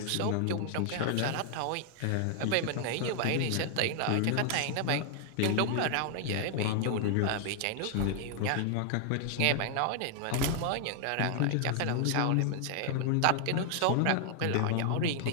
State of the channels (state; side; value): different; both; correlation 0.00